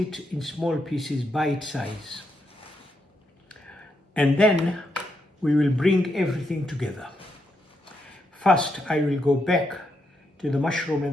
in small pieces, bite size. And then we will bring everything together. First, I will go back to the mushroom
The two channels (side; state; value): both; normal; correlation 0.81